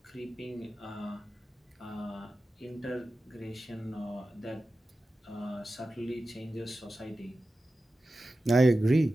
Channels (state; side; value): normal; both; correlation 0.94